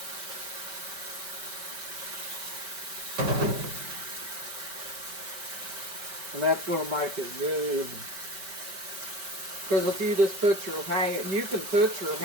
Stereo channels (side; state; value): left; late; 5.2 ms